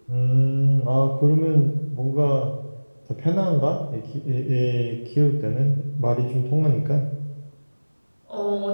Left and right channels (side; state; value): both; inverted; correlation -1.00